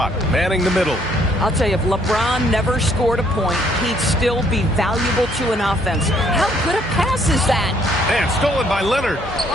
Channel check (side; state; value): both; normal; correlation 0.66